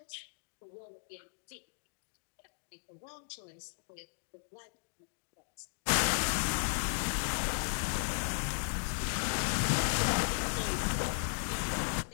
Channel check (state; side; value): silent; right; digital silence